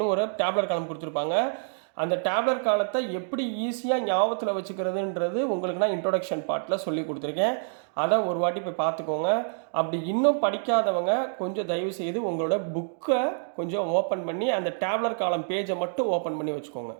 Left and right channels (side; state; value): left; silent; digital silence